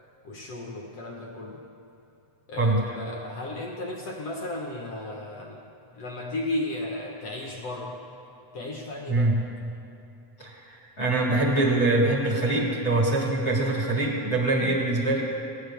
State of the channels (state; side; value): late; right; 7.9 ms